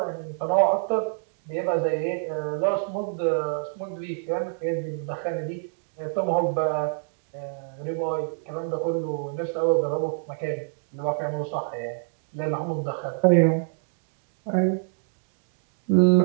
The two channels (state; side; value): silent; left; digital silence